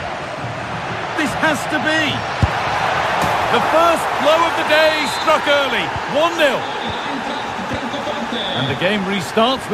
This has to be. The first blow of the day struck early, 1-0. And the game restarts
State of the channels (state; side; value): identical; both; correlation 1.00